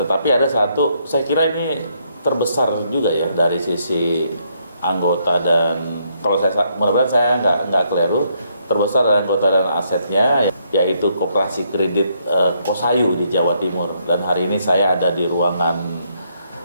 ada satu, saya kira ini terbesar juga ya dari sisi anggota dan kalau saya mudah-mudahan saya nggak keliru, terbesar dari anggota dan asetnya yaitu koperasi kredit Kosayu di Jawa Timur. Dan hari ini saya ada di ruangan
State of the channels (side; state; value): both; inverted; correlation -0.73